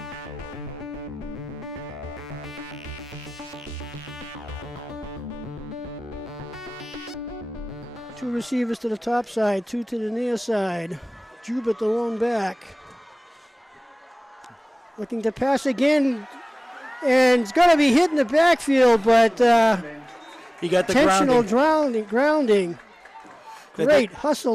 Two receivers to the top side, two to the near side. Jubert the lone back. Looking to pass again, and it's going to be hit in the backfield, but he got the intentional grounding. Great hustle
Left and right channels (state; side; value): normal; both; correlation 0.98